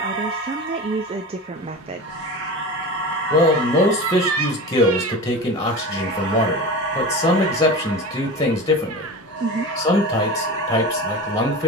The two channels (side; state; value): both; normal; correlation 0.30